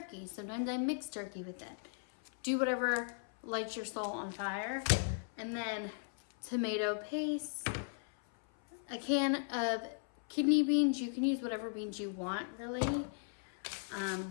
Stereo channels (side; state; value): right; silent; 53 dB below the other